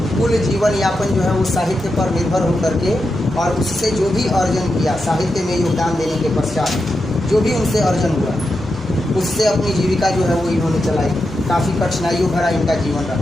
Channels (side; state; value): both; normal; correlation 0.87